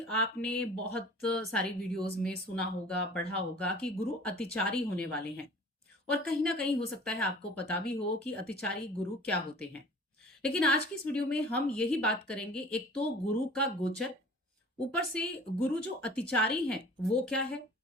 आपने बहुत सारी वीडियोस में सुना होगा, पढ़ा होगा कि गुरु अतिचारी होने वाले हैं और कहीं ना कहीं हो सकता है आपको पता भी हो कि अतिचारी गुरु क्या होते हैं। लेकिन आज की इस वीडियो में हम यही बात करेंगे, एक तो गुरु का गोचर, ऊपर से गुरु जो अतिचारी हैं वो क्या है,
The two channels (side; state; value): both; normal; correlation 0.46